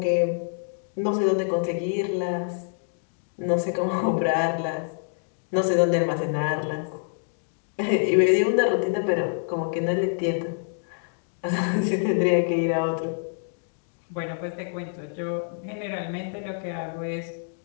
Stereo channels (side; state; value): right; silent; digital silence